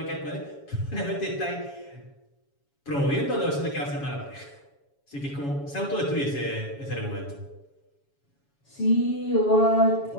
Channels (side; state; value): right; late; 7.2 ms